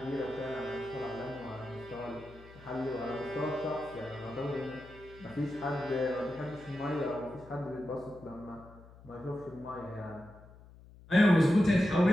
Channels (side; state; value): left; noise; hum, 21 dB below the sound